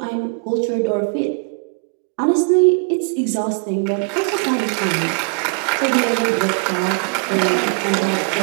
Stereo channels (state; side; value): quieter; left; 35.2 dB